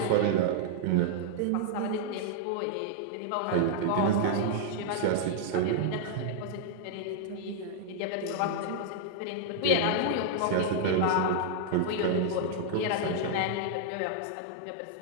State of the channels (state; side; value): different; both; correlation -0.01